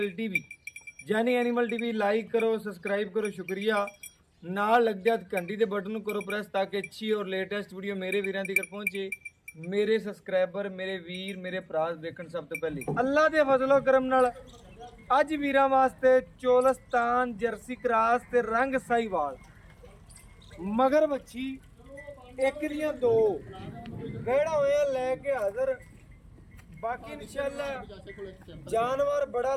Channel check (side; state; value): both; identical; correlation 1.00